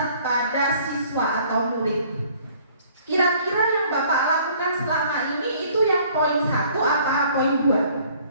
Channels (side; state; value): both; inverted; correlation -0.57